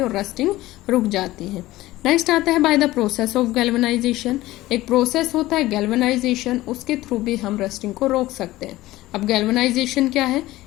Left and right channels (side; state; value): right; quieter; 17.1 dB